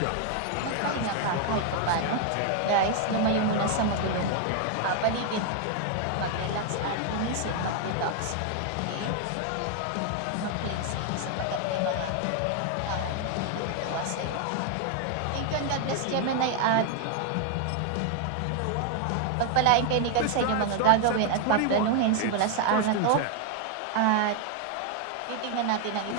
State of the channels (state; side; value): different; both; correlation 0.01